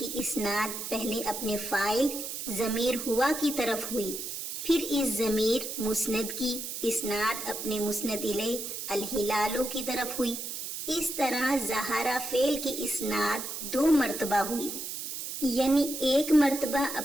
اسناد پہلے اپنے فاعل ضمیر ہوا کی طرف ہوئی، پھر اس ضمیر مسند کی اسناد اپنے مسند الیہ الہلالو کی طرف ہوئی۔ اس طرح ظہرا فعل کی اسناد 2 مرتبہ ہوئی، یعنی ایک مرتبہ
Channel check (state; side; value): noise; right; hiss, 6 dB below the sound